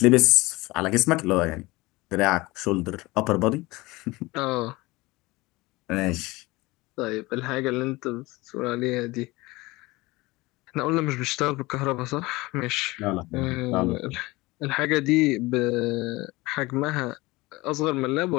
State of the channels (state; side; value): quieter; right; 21.5 dB